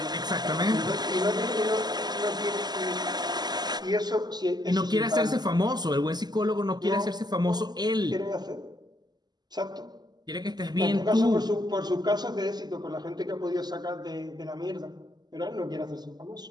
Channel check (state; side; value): late; left; 0.20 ms